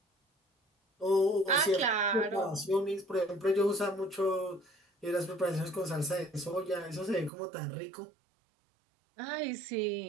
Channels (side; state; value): left; drops out; at 7.3 s